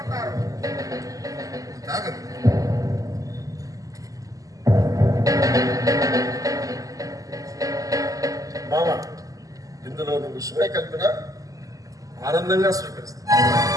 తాగరు. మామ, ఇందులో నువ్వు విషయమే కలిపినా ఆనందంగా స్వీకరిస్తా.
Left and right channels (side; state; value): left; late; 0.17 ms